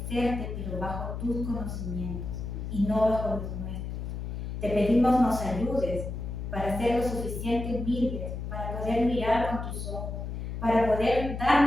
pero bajo tus conocimientos y no bajo los nuestros. Te pedimos nos ayudes para ser lo suficiente humildes, para poder mirar con tus ojos, para poder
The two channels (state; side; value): noise; left; hum, 5 dB below the sound